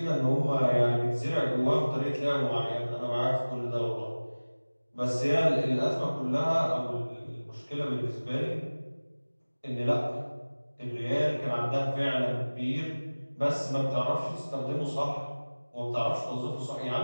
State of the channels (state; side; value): inverted; both; correlation -1.00